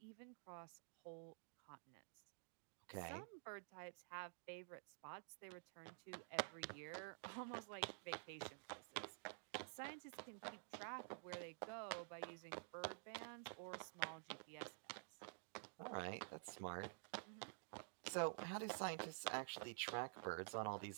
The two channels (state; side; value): silent; left; digital silence